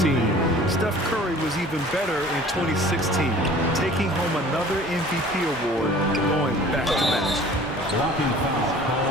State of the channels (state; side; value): normal; both; correlation 0.47